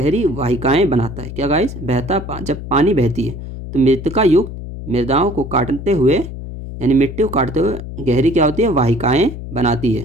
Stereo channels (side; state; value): left; noise; hum, 10 dB below the sound